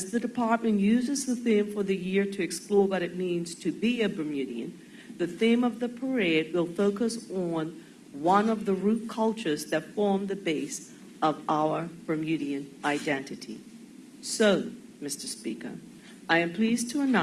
the department uses the theme for the year to explore what it means to be a Bermudian, the theme of the parade will focus on one of the root cultures that form the base of our Bermudian identity. So, Mr. Speaker, I am pleased to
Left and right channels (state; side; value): identical; both; correlation 1.00